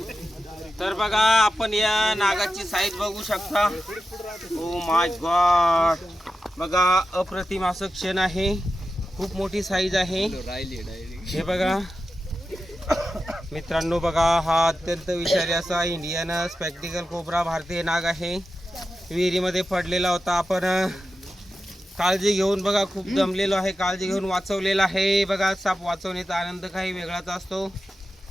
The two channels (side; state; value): both; normal; correlation 0.91